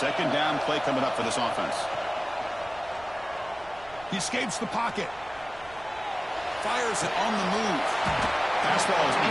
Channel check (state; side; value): noise; right; rumble, 22 dB below the sound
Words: down play coming up for this offense. He escapes the pocket. Fires it on the move. Pass ball is